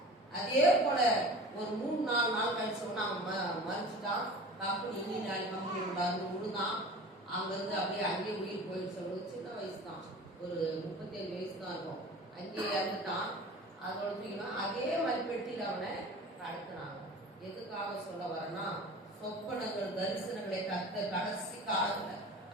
அதே போல ஒரு 3-4 நாள் கழிச்சு சொன்னா அவன் மறிச்சுட்டான். கம்பெனி இன்ஜினியர் கம்பெனி விடாது முழுதான். அங்கிருந்து அப்படியே அங்கேயே உயிர் போயிடுச்சு. சின்ன வயசு தான், ஒரு 37 வயசு தான் இருக்கும். அங்கேயே இறந்துட்டான். அதோட தூக்கினா அதே மாதிரி பெட்டியில் அவனை கடத்தினாங்க. எதுக்காக சொல்ல வரேன்னா, சொப்பனங்கள் தரிசனங்களை கடைசி காலத்துல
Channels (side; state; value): both; normal; correlation 0.39